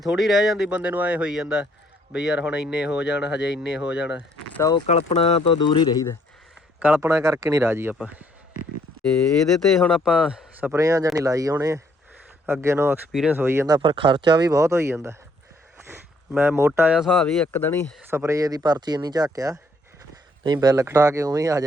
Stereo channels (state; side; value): normal; both; correlation 0.67